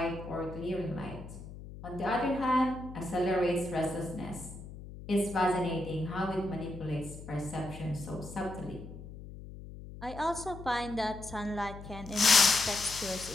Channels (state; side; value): noise; left; hum, 13 dB below the sound